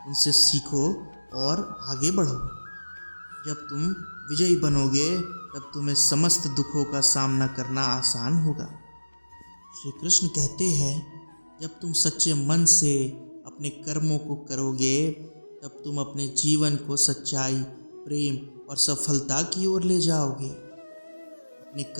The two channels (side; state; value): both; inverted; correlation -1.00